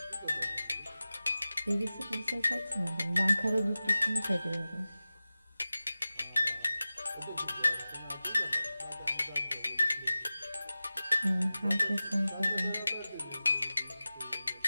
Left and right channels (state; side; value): inverted; both; correlation -0.97